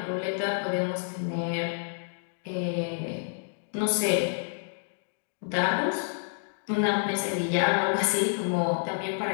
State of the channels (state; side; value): silent; right; digital silence